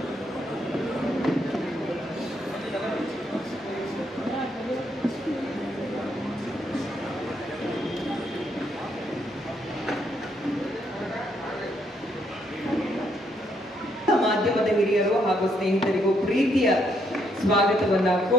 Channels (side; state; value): both; normal; correlation 0.74